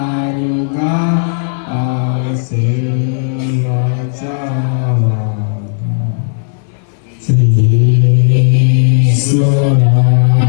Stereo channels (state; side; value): silent; right; digital silence